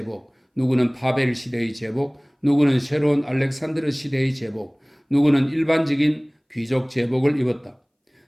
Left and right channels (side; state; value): both; identical; correlation 1.00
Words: 누구는 파벨 시대의 제복, 누구는 새로운 알렉산드르 시대의 제복, 누구는 일반적인 귀족 제복을 입었다.